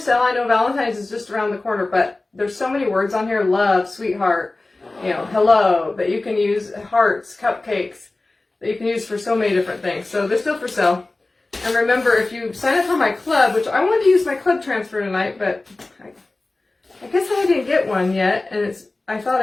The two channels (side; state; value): right; quieter; 3.1 dB